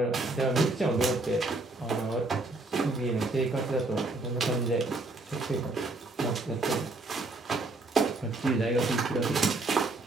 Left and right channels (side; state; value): left; quieter; 3.1 dB